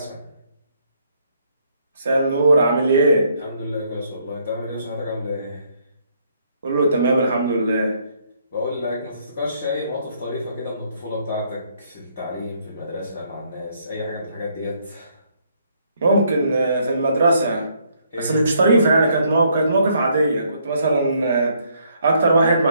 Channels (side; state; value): both; inverted; correlation -0.69